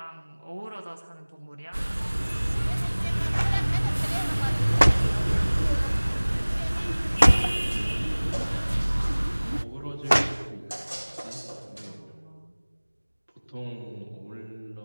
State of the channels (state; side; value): inverted; both; correlation -1.00